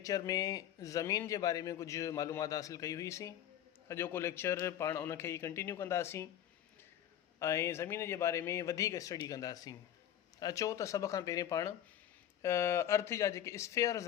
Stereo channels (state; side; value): quieter; right; 10.9 dB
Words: में ज़मीन जे बारे में कुझु मालूमात हासिल कई हुईसीं। अॼोको लेक्चर पाण उनखे ई कंटिन्यू कंदासीं ऐं ज़मीन जे बारे में वधीक स्टडी कंदासीं। अचो त सभ खां पहिरीं पाण अर्थ जा जेके स्फेयर्स